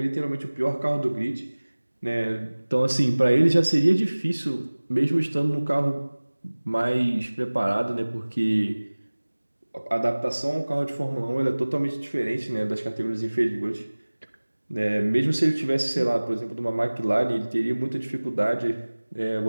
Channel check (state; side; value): inverted; both; correlation -1.00